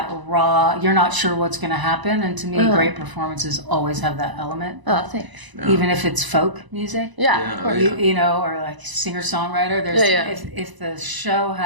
raw. You're not sure what's going to happen, and to me, great performances always have that element. Oh, thanks. Even if it's folk music, Of course. or like singer songwriter. There's if the show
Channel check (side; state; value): left; late; 1.0 ms